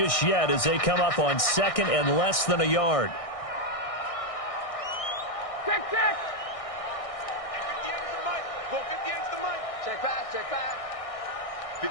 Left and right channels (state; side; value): late; right; 1.6 ms